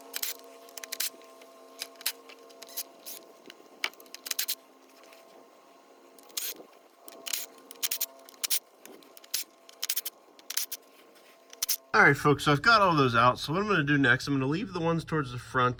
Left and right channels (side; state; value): both; identical; correlation 1.00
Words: Alright folks, so I've got all those out. So what I'm going to do next, I'm going to leave the ones towards the